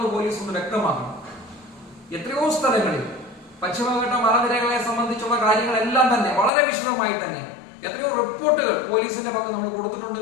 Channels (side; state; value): right; drops out; at 6.5 s